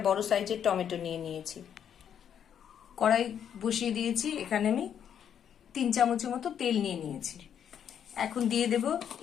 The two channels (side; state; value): right; quieter; 8.8 dB